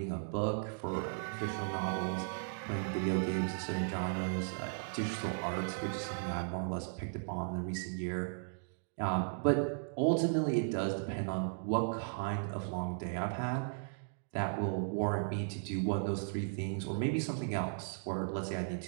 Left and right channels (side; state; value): left; silent; digital silence